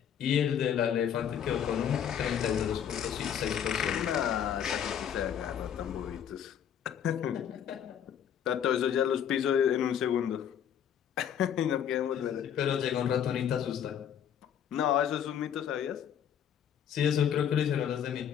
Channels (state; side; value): quieter; right; 9.0 dB